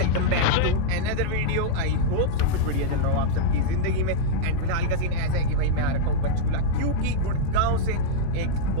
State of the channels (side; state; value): both; different; correlation -0.02